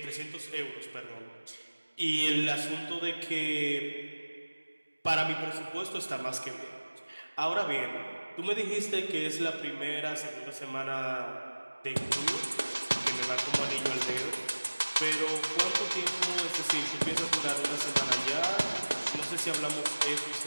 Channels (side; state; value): both; inverted; correlation -1.00